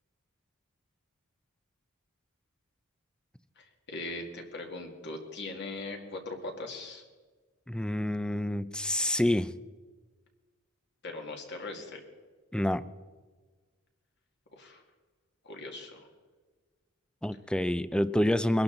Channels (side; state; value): both; normal; correlation 0.80